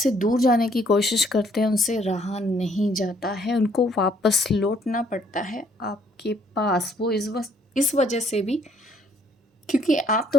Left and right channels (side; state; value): both; normal; correlation 0.65